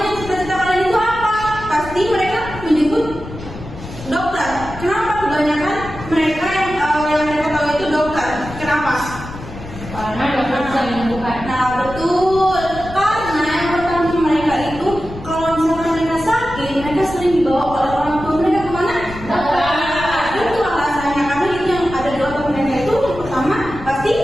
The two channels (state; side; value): noise; left; rumble, 13 dB below the sound